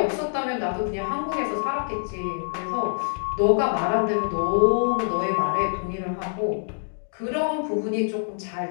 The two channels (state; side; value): silent; right; digital silence